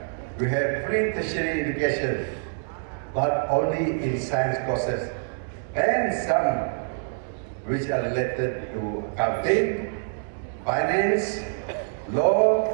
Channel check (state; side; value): silent; left; digital silence